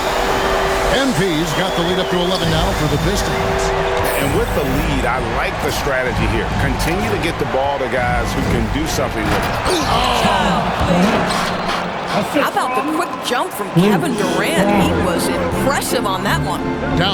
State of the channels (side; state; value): both; identical; correlation 1.00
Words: MP's got the lead up to 11 now for the Pistons. And with the lead, I like the strategy here. Continue to get the ball to guys who can do something with it. How about the quick jump from Kevin Durant? He was impressive on that one.